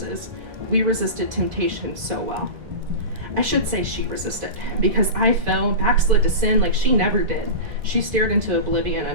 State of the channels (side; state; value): left; late; 2.5 ms